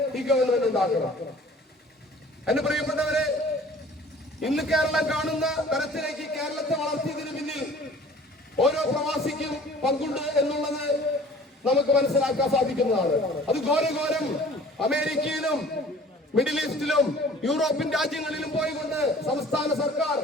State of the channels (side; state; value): both; normal; correlation 0.49